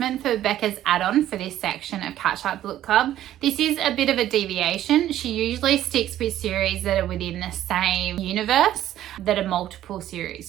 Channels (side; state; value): left; quieter; 12.6 dB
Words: for Becca's add-on for this section of Catch Up Book Club. This is a bit of a deviation. She usually sticks with series that are within the same universe, that are multiple